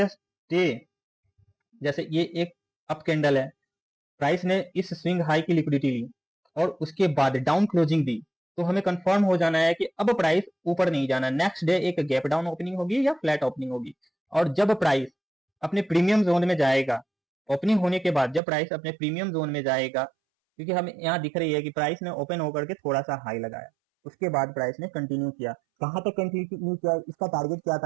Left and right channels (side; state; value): left; drops out; at 18.4 s